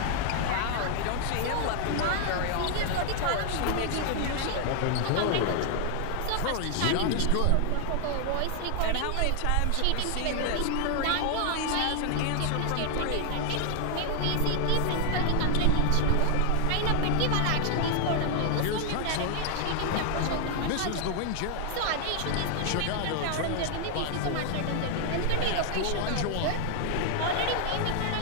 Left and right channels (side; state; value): both; different; correlation 0.00